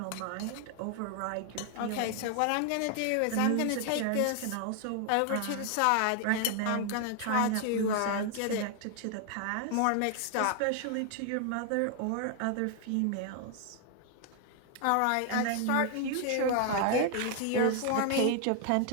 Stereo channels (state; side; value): different; both; correlation 0.00